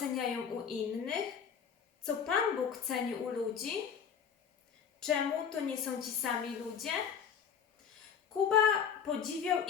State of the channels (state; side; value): quieter; right; 7.3 dB